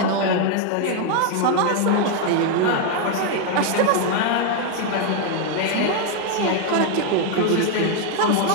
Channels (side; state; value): both; different; correlation 0.01